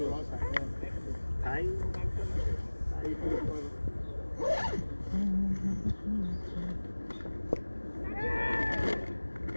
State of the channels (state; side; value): inverted; both; correlation -1.00